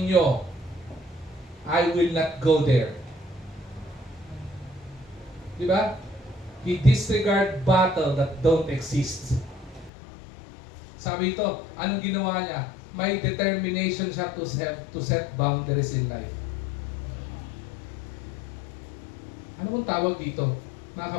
I will not go there. Diba? He disregard battle that don't exist. Sabi ito, anong ginawa niya? May determination siya to set boundaries in life. Ano kung tawag dito? Mga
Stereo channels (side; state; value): right; drops out; at 9.9 s